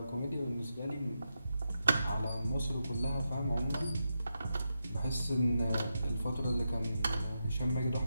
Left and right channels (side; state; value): both; inverted; correlation -0.86